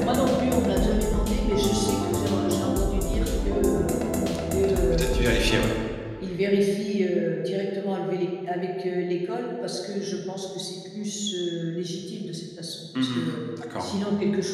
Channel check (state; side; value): identical; both; correlation 1.00